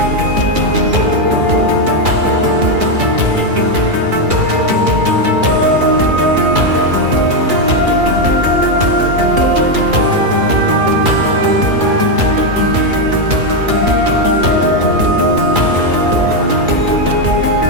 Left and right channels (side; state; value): left; late; 2.3 ms